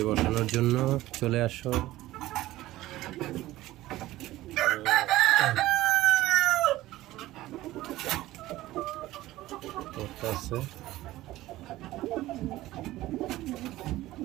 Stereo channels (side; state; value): left; quieter; 16.5 dB